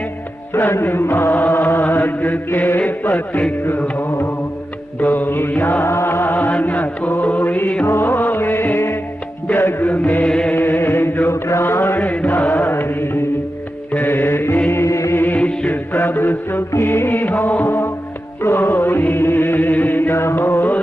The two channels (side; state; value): both; normal; correlation 0.91